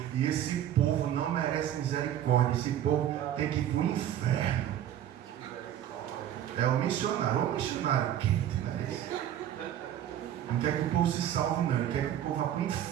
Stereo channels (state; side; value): quieter; left; 11.0 dB